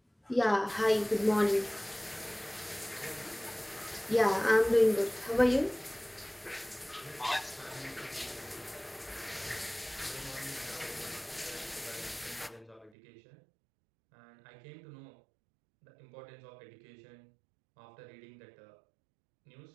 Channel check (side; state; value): left; drops out; at 12.9 s